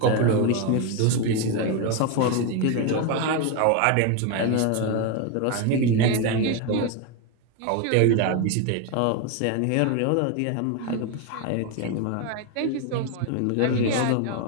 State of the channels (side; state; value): both; different; correlation 0.02